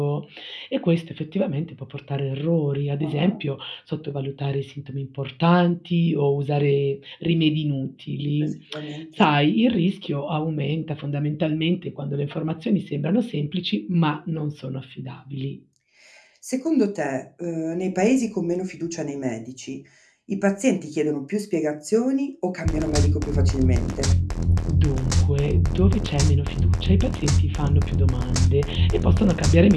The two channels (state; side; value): identical; both; correlation 1.00